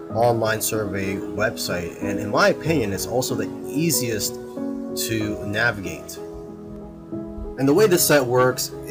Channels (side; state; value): both; identical; correlation 1.00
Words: online survey website, and in my opinion it's also the easiest to navigate. And the way this site works